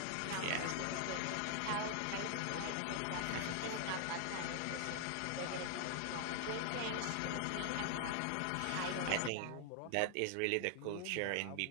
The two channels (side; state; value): both; different; correlation 0.00